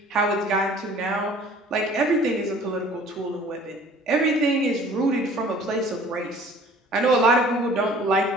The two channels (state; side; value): normal; both; correlation 0.50